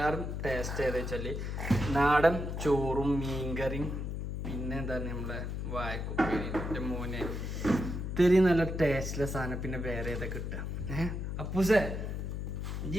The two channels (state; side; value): noise; left; hum, 4 dB below the sound